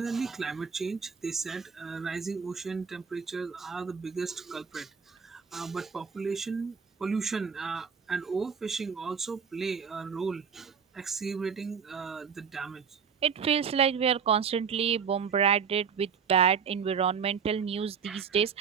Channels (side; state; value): left; quieter; 6.6 dB